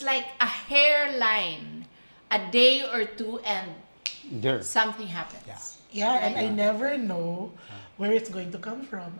like a hairline, a day or two, and There. something happens. Yeah. Yeah, and I never know where it's going to come from.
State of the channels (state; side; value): inverted; both; correlation -1.00